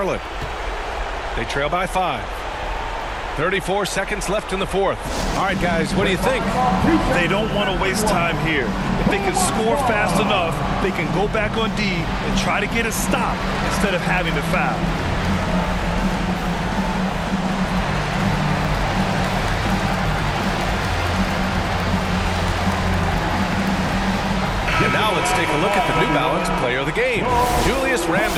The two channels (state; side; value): identical; both; correlation 1.00